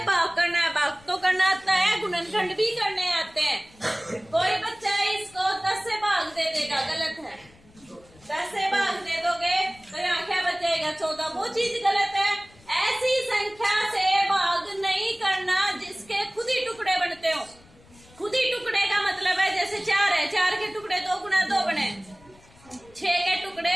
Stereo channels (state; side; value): noise; left; rumble, 26 dB below the sound